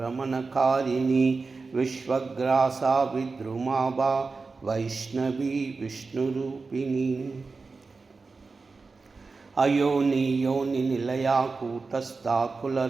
विश्वग्रासा विद्रुमाबा वैष्णवी विष्णुरूपिणी अयोनि योनि निलया कूटस्था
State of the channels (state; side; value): quieter; left; 4.2 dB